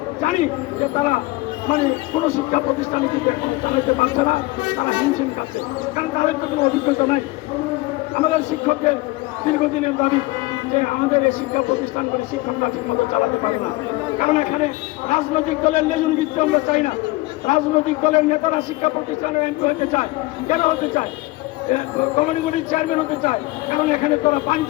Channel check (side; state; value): right; quieter; 21.2 dB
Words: জানি যে তারা মানে কোনো শিক্ষা প্রতিষ্ঠানে কিন্তু এখন চালাইতে পারছে না, তারা হিমশিম খাচ্ছে, কারণ তাদের তো কোনো অভিজ্ঞতা নাই। আমাদের শিক্ষকদের দীর্ঘদিনের দাবি যে আমাদের এই শিক্ষা প্রতিষ্ঠানগুলি শিক্ষকরা ঠিক মতো চালাতে পারে না, কারণ এখানে রাজনৈতিক দলের লেজন বৃত্তি আমরা চাই না। রাজনৈতিক দলের নেতারা শিক্ষা প্রতিষ্ঠানের এমপি হতে চায়। কেন হতে চায়? কমিউনিটির চেয়ারম্যান হতে চায়, কারণ এখানে তারা